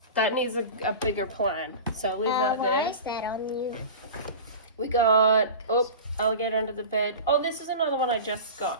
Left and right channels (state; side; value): inverted; both; correlation -0.32